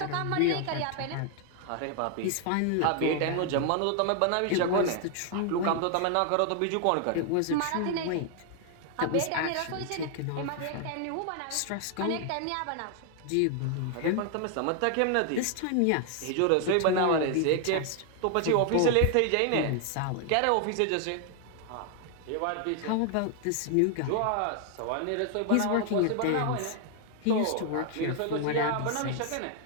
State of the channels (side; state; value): both; different; correlation 0.00